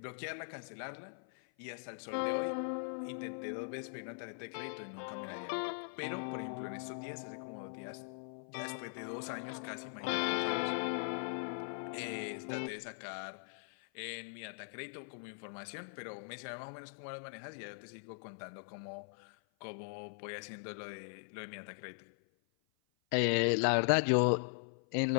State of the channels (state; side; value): silent; right; 51 dB below the other